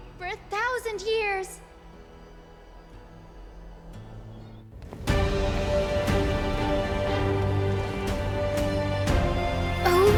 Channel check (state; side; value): identical; both; correlation 1.00